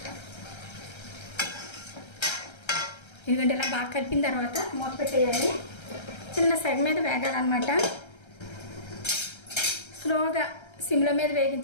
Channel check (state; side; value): late; right; 1.3 ms